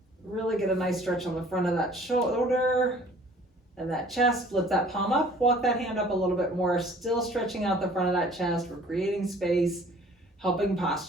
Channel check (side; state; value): both; normal; correlation 0.53